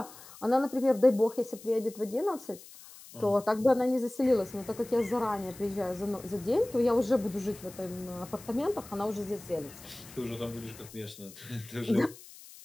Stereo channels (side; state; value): left; noise; hiss, 19 dB below the sound